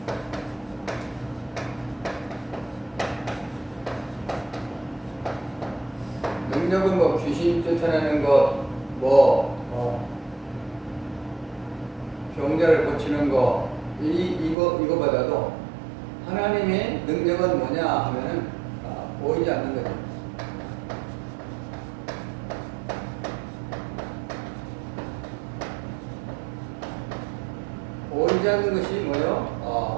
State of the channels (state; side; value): drops out; left; at 14.6 s